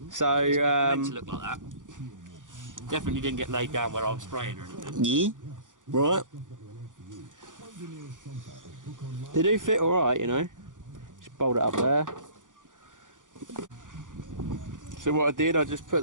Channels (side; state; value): left; late; 0.88 ms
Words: So, it's meant to look like that. Definitely didn't get laid down where I was spraying or anything. Yeah, right. They do fit alright, you know. Just bolt it up there. So what I did, I just put